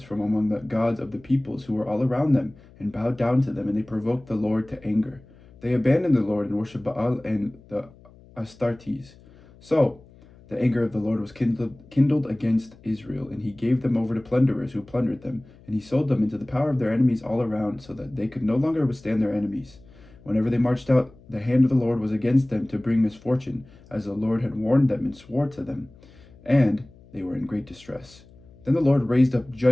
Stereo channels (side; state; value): left; noise; hum, 24 dB below the sound